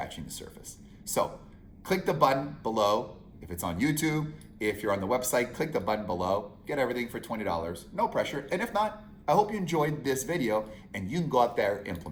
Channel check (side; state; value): both; identical; correlation 1.00